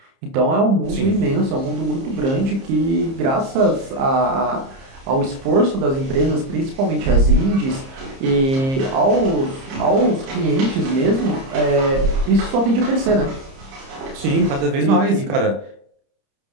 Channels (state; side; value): late; left; 30 ms